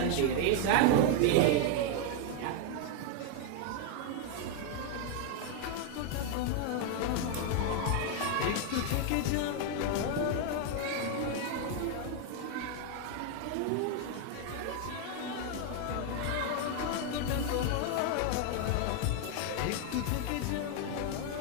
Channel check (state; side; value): different; both; correlation 0.00